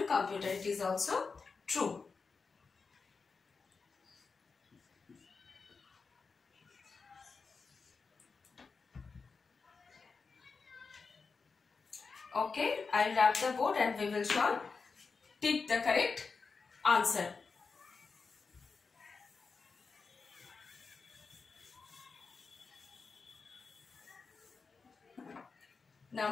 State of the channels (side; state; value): right; quieter; 4.8 dB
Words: computer. It is also true. Okay, I'll wrap the board and we will solve. Tick the correct answer.